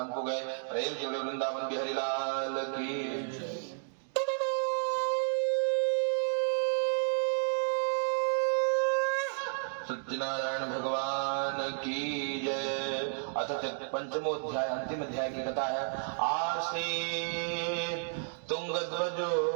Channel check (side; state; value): left; silent; digital silence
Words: को गए। प्रेम से बोलिए वृंदावन बिहारी लाल की। सत्यनारायण भगवान की जय। अथ पंचमोध्याय अंतिम अध्याय की कथा है। आसीत् तुंगध्वजो